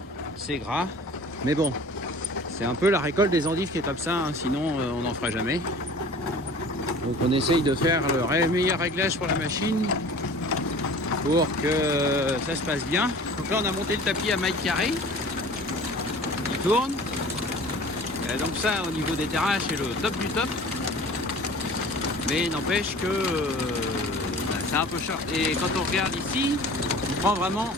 c'est gras. Mais bon, c'est un peu la récolte des endives qui est comme ça, hein, sinon on n'en fera jamais. Donc on essaye de faire le meilleur réglage pour la machine pour que ça se passe bien. Donc là on a monté le tapis à maille carrée, il tourne. Et donc ça au niveau des terrasses c'est le top du top. Mais n'empêche que c'est un peu cher. Et quand on regarde ici, on prend vraiment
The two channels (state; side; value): normal; both; correlation 0.44